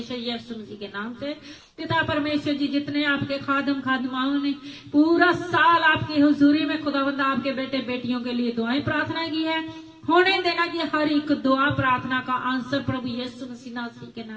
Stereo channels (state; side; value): identical; both; correlation 1.00